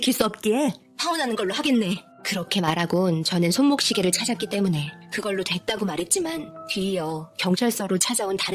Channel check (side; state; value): both; identical; correlation 1.00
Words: 수 없기에 파혼하는 걸로 하겠네. 그렇게 말하곤 저는 손목시계를 찾았기 때문에 그걸로 됐다고 말했지만 뒤이어 경찰서로 찾아온